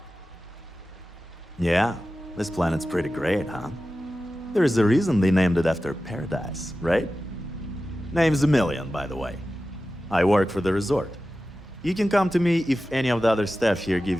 Yeah, this planet's pretty great, huh? There's a reason they named it after paradise, right? Name's a million, by the way. I work for the resort. You can come to me if any of the other staff here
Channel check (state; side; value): normal; both; correlation 0.94